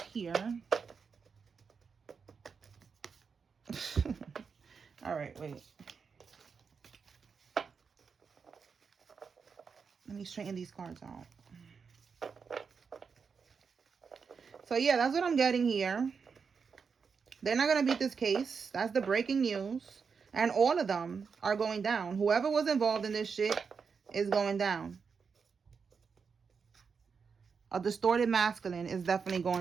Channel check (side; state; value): left; quieter; 5.7 dB